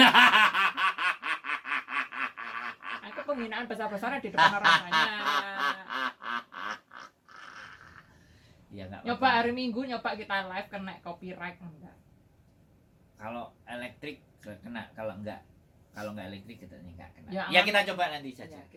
Aku penghinaan besar-besaran di depan orang banyak. Ya nggak Nyoba apa-apa. hari Minggu nyoba kita live kena copyright enggak. Kalau elektrik kena, kalau nggak elektrik kita nggak kena. Ya, Ya, kita coba nanti saja. Ya,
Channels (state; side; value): identical; both; correlation 1.00